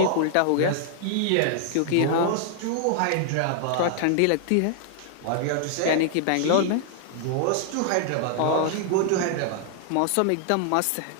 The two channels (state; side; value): different; both; correlation -0.01